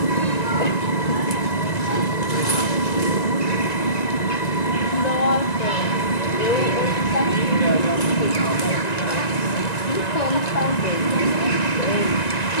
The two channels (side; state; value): right; late; 1.9 ms